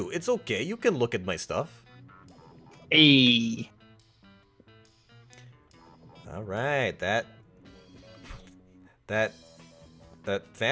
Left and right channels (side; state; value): both; identical; correlation 1.00